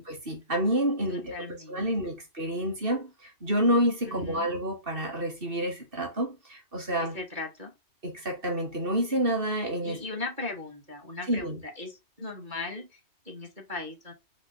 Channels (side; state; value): left; late; 2.6 ms